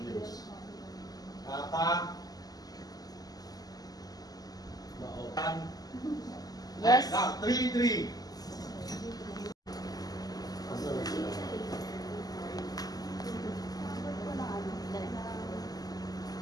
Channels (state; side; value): late; right; 0.18 ms